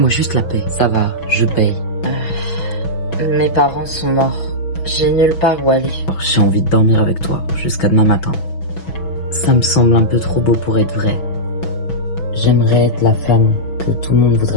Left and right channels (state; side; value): late; right; 6.1 ms